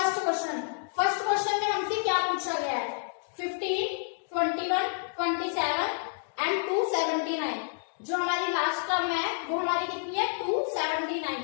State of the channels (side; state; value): right; silent; digital silence